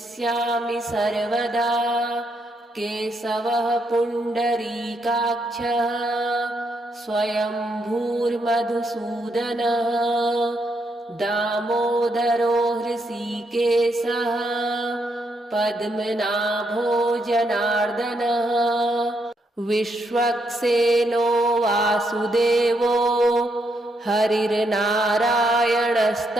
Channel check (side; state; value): both; normal; correlation 0.78